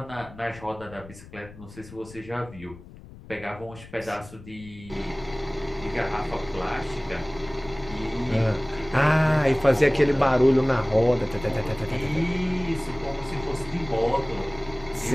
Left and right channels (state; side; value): noise; left; rumble, 18 dB below the sound